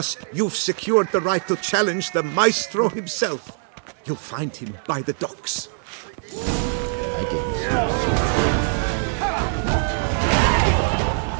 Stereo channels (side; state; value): left; silent; 59 dB below the other